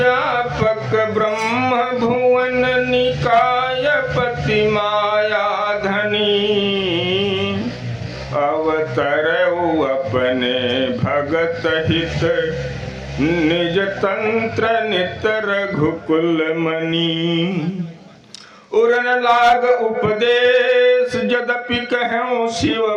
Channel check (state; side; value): identical; both; correlation 1.00